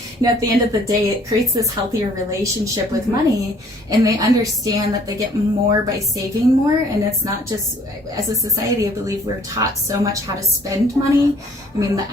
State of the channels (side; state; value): both; normal; correlation 0.58